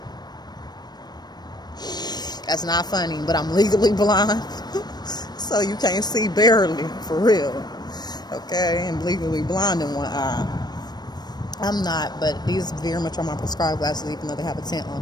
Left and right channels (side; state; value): right; late; 0.20 ms